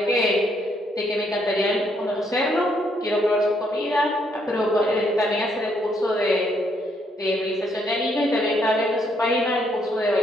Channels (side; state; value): both; normal; correlation 0.72